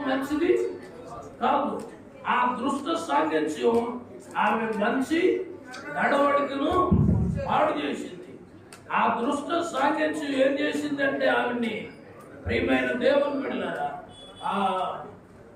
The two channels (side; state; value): both; identical; correlation 1.00